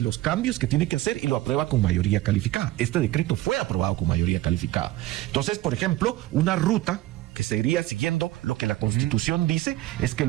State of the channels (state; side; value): quieter; left; 16.3 dB